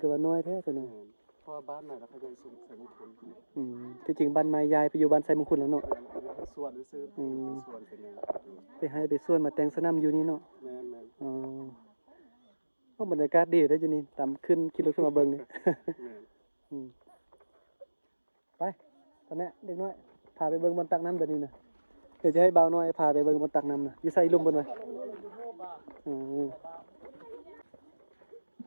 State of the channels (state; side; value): inverted; both; correlation -1.00